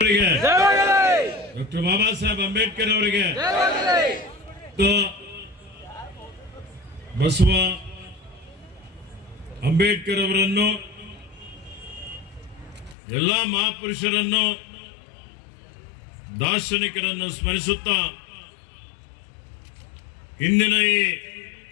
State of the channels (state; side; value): drops out; right; at 13.0 s